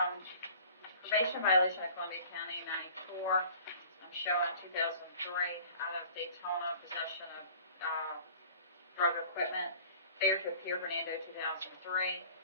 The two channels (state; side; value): inverted; both; correlation -0.47